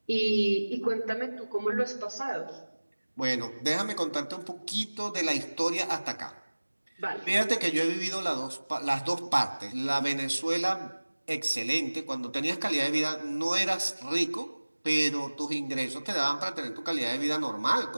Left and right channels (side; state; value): both; inverted; correlation -1.00